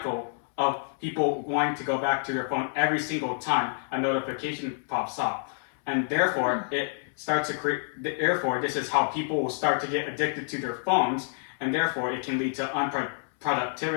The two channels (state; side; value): silent; right; 59 dB below the other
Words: of people wanting to go back to their phone every single time a notification pops up. And therefore, it starts to create, therefore, this is how people will start to get addicted to their phones, and therefore it can lead to